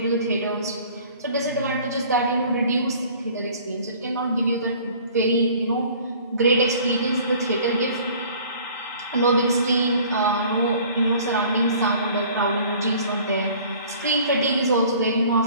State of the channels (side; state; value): both; inverted; correlation -0.50